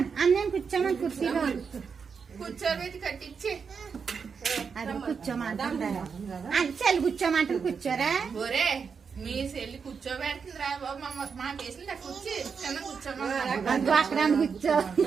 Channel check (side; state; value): left; quieter; 5.9 dB